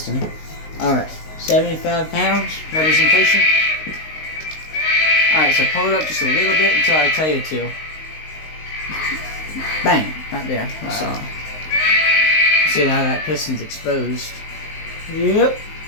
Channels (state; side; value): late; right; 19 ms